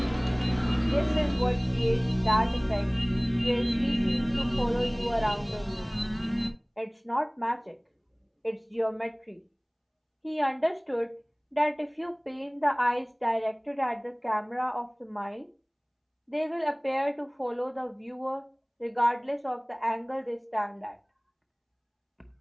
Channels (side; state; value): both; identical; correlation 1.00